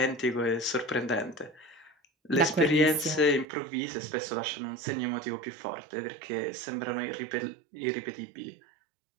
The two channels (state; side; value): drops out; left; at 3.5 s